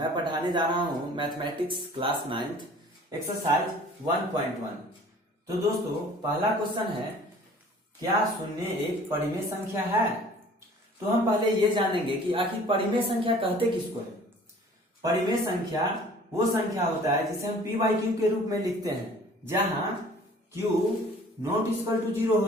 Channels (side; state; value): both; normal; correlation 0.50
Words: पढ़ाने जा रहा हूं मैथमेटिक्स क्लास 9th एक्सरसाइज 1.1। तो दोस्तों, पहला क्वेश्चन है, क्या शून्य एक परिमेय संख्या है? तो हम पहले ये जानेंगे कि आखिर परिमेय संख्या कहते किसको है। परिमेय संख्या वो संख्या होता है जिसे हम p/q के रूप में लिखते हैं, जहां q नॉट इक्वल टू 0